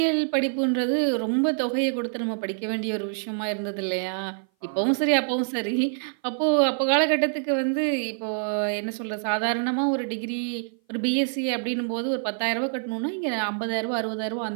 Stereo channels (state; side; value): silent; left; 57 dB below the other